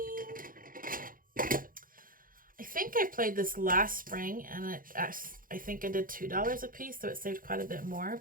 I think I played this last spring, and I think I did $2 a piece, so it saved quite a bit more.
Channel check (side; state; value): left; late; 0.40 ms